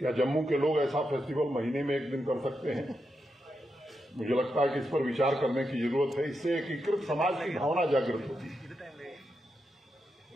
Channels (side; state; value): both; normal; correlation 0.85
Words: जम्मू के लोग ऐसा फेस्टिवल महीने में एक दिन कर सकते हैं? मुझे लगता है कि इस पर विचार करने की जरूरत है। इससे एकीकृत समाज की भावना जागृत होती है।